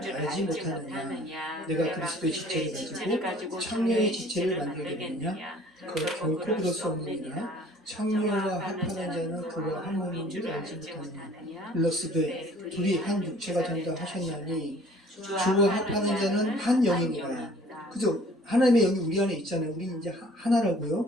못하느냐 내가 그리스도의 지체를 가지고 창녀의 지체를 만들겠느냐 결코 그럴 수 없느니라 창녀와 합하는 자는 그와 한 몸인 줄 알지 못하느냐 일러스되 둘이 한 육체가 된다 하셨나니 주와 합하는 자는 한 영이니라. 그죠? 하나님의 영이 우리 안에 있잖아요. 우리는 이제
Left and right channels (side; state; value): both; normal; correlation 0.53